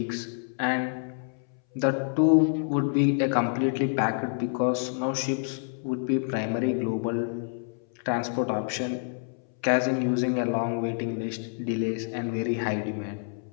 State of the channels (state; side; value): silent; right; 60 dB below the other